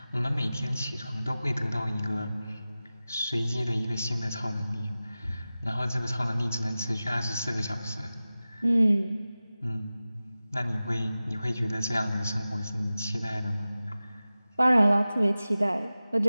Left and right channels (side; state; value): both; inverted; correlation -0.96